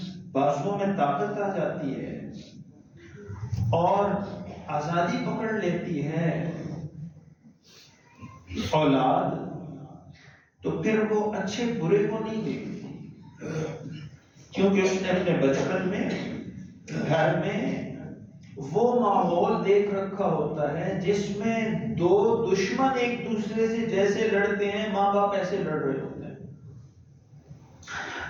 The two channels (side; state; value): both; identical; correlation 1.00